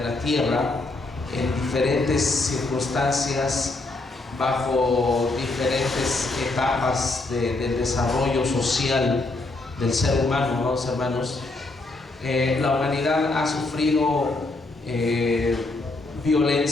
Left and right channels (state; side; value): quieter; right; 3.1 dB